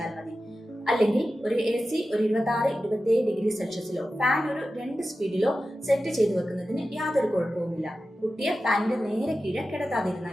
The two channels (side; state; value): both; normal; correlation 0.93